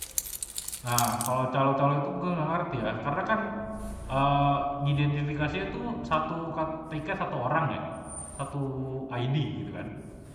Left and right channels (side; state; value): both; identical; correlation 1.00